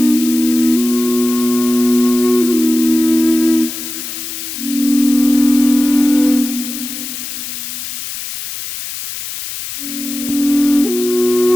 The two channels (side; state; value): left; noise; hiss, 8 dB below the sound